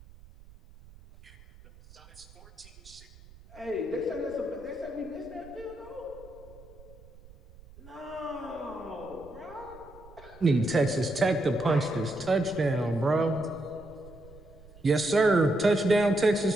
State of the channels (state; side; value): noise; right; rumble, 22 dB below the sound